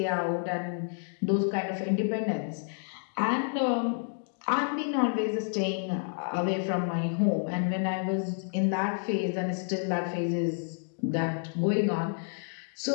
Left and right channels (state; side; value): silent; right; 58 dB below the other